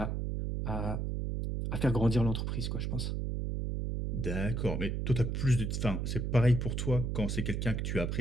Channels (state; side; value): noise; right; hum, 1 dB below the sound